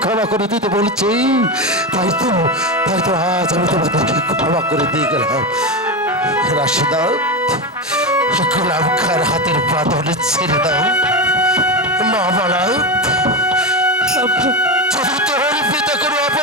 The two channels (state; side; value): normal; both; correlation 0.16